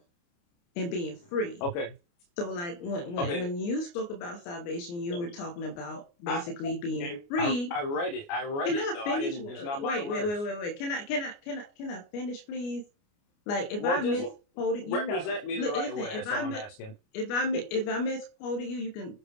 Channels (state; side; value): late; right; 29 ms